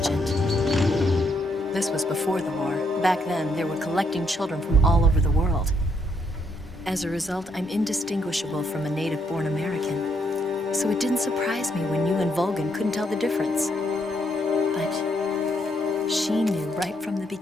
This was before the war. Back then, they were collecting children from all over the world. As a result, I'm indistinguishable from a native-born American. So it didn't surprise me when you and Volgin couldn't tell the difference. But she knew right from the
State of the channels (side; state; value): both; normal; correlation 0.74